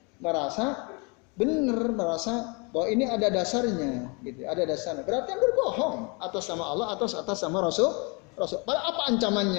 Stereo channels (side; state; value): right; quieter; 31.4 dB